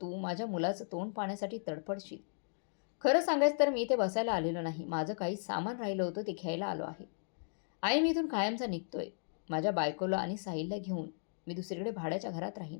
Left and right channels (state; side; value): silent; right; digital silence